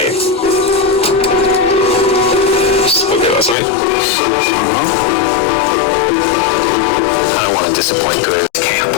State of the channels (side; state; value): right; drops out; at 3.6 s